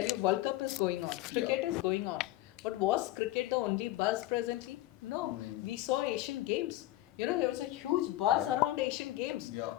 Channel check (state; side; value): quieter; right; 16.2 dB